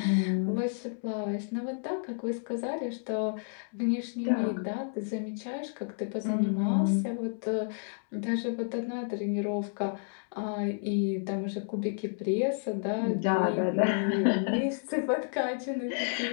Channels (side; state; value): right; silent; digital silence